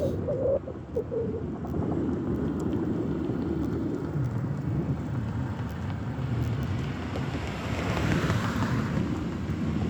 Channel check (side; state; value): both; identical; correlation 1.00